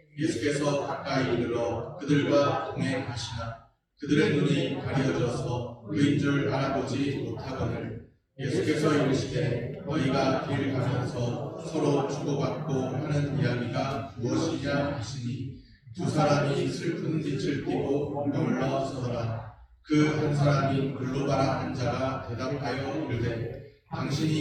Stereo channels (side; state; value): both; identical; correlation 1.00